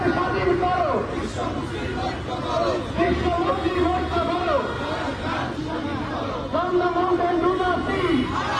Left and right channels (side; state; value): both; identical; correlation 1.00